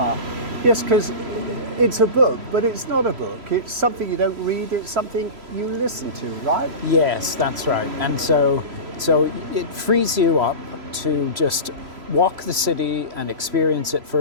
Yes, because it's a book, but it's not a book. It's something you don't read, it's something you listen to, right? Yes, that's right. And so it frees you up to just walk the city and experience it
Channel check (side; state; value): left; late; 3.0 ms